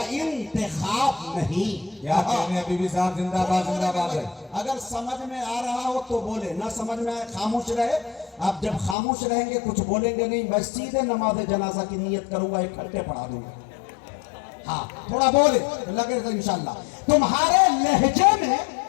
इंतखाब नहीं। क्या कहने अभी भी साहब, जिंदाबाद जिंदाबाद है। अगर समझ में आ रहा हो तो बोले, ना समझ में आए खामोश रहे। आप जब खामोश रहेंगे कुछ बोलेंगे नहीं, मैं सीधे नमाज जनाजा की नियत करूंगा, इकट्ठे पढ़ा दूंगा। हाँ थोड़ा बोले तो लगे तो इंशाल्लाह। तुम्हारे लहजे में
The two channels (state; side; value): drops out; right; at 9.0 s